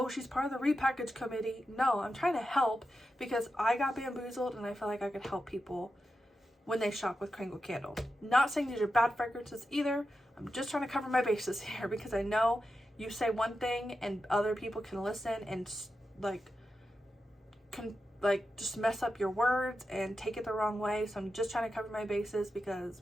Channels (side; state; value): both; normal; correlation 0.89